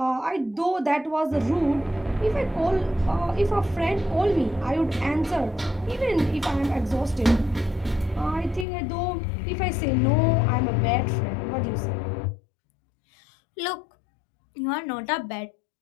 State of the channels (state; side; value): drops out; right; at 8.7 s